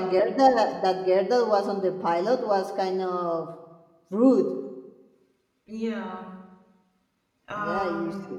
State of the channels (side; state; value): both; identical; correlation 1.00